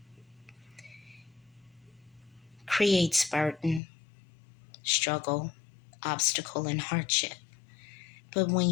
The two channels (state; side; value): drops out; right; at 3.8 s